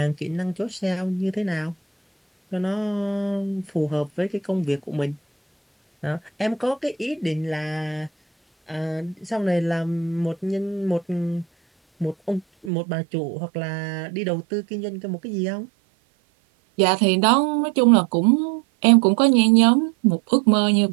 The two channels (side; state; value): left; drops out; at 12.7 s